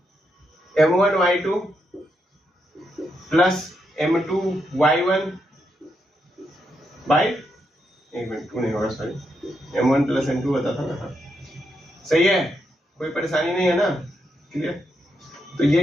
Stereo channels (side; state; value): both; normal; correlation 0.81